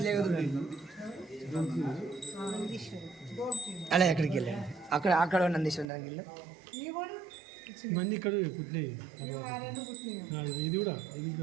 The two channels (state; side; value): drops out; left; at 5.9 s